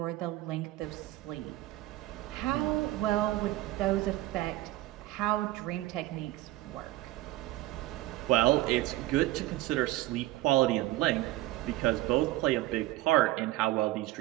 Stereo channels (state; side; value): quieter; left; 17.1 dB